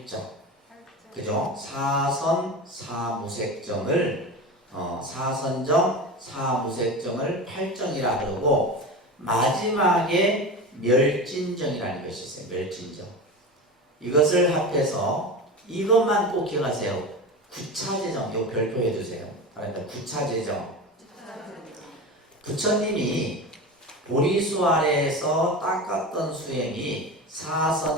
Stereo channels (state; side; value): normal; both; correlation 0.27